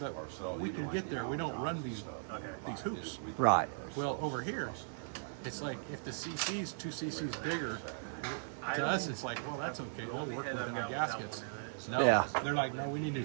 we can get there. We don't run these hoops. Right. Well, over here, it's like if the cc's 2 cc's bigger, to us it's like, well, that's okay. They'll work with it on gaskets. No, Yeah. they're like, no, we need new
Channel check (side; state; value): left; silent; digital silence